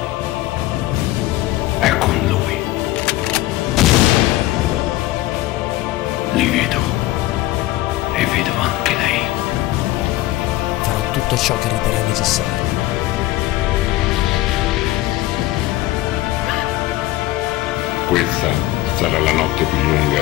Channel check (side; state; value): right; quieter; 16.6 dB